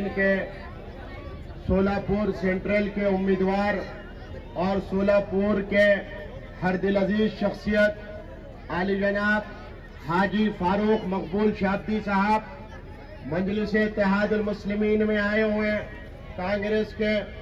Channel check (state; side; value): identical; both; correlation 1.00